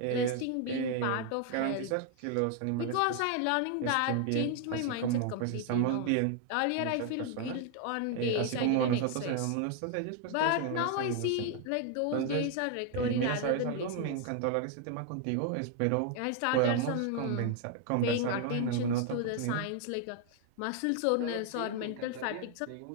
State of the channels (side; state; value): both; different; correlation 0.00